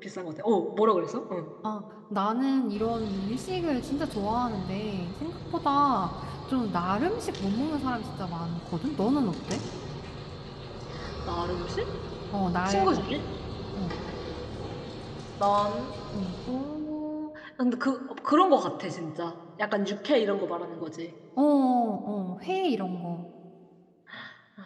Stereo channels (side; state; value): both; identical; correlation 1.00